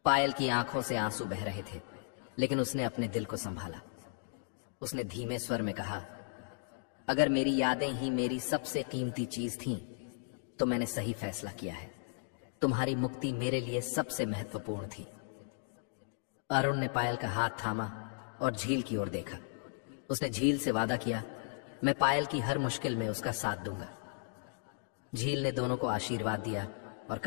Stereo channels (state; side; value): silent; right; digital silence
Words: पायल की आंखों से आंसू बह रहे थे, लेकिन उसने अपने दिल को संभाला। उसने धीमे स्वर में कहा, अगर मेरी यादें ही मेरी सबसे कीमती चीज थीं, तो मैंने सही फैसला किया है। तुम्हारी मुक्ति मेरे लिए सबसे महत्वपूर्ण थी। अरुण ने पायल का हाथ थामा और झील की ओर देखा। उसने झील से वादा किया, मैं पायल की हर मुश्किल में उसका साथ दूंगा। झील ने दोनों को आशीर्वाद दिया और